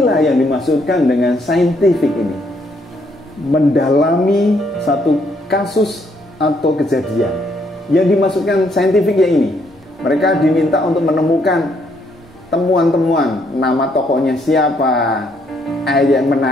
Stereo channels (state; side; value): normal; both; correlation 0.71